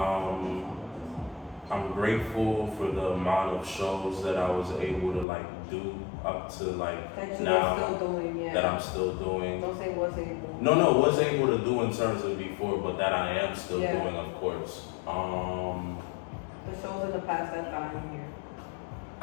I'm grateful for the amount of shows that I was able to like do up to like that you now are still doing, yeah. that I'm still doing. Don't say was able. No, was able to do in terms of before, but that I am still Yeah. doing, of course. The shows in the past that I'm here.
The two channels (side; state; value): right; drops out; at 5.2 s